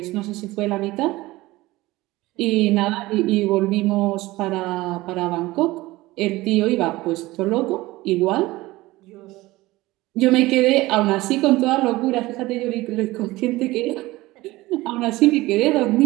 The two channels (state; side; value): quieter; left; 19.1 dB